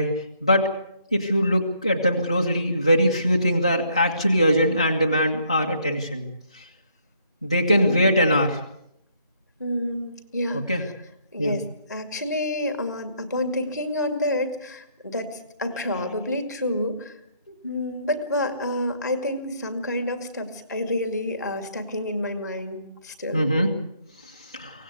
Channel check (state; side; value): inverted; both; correlation -0.67